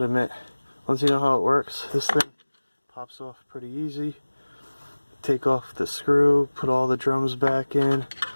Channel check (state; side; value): inverted; both; correlation -1.00